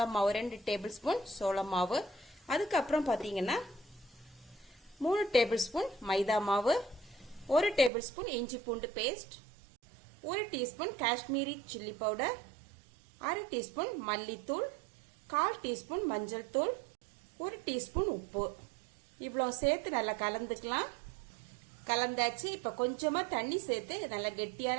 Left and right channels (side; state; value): left; drops out; at 7.9 s